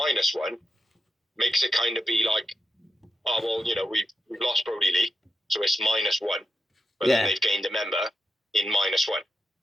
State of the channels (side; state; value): both; normal; correlation 0.88